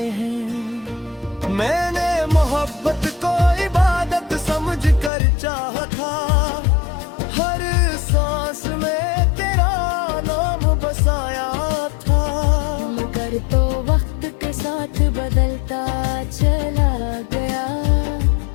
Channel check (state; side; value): drops out; right; at 5.1 s